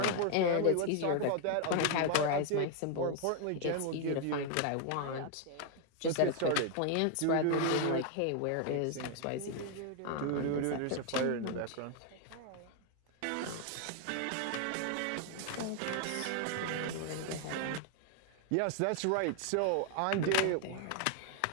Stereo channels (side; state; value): both; different; correlation 0.00